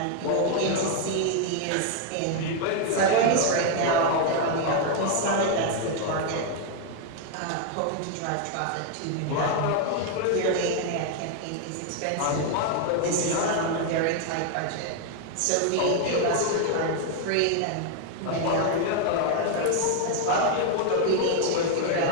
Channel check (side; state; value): both; different; correlation 0.00